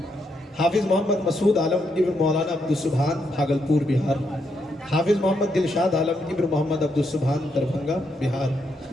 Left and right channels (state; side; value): normal; both; correlation 0.79